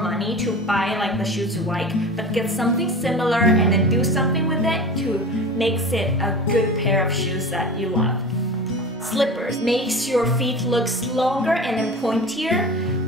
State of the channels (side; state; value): both; normal; correlation 0.33